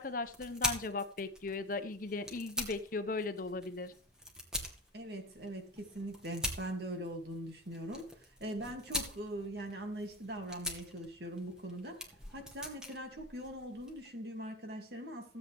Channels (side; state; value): both; normal; correlation 0.25